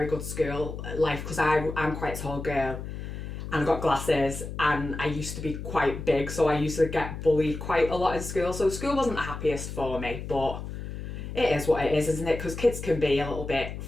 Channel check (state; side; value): noise; left; hum, 8 dB below the sound